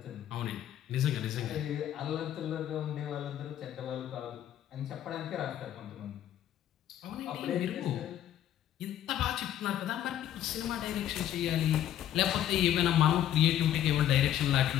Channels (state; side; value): quieter; right; 11.3 dB